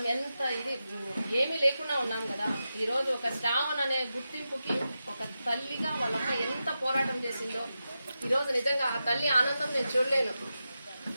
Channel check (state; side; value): inverted; both; correlation -0.90